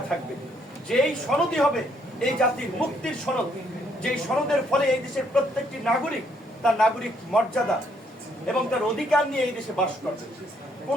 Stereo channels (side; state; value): both; normal; correlation 0.70